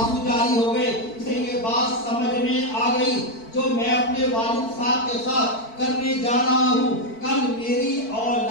جاری ہو گئے. اسے یہ بات سمجھ میں آ گئی جو میں اپنے والد صاحب کے ساتھ کرنے جا رہا ہوں, کل میری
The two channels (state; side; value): late; right; 4.5 ms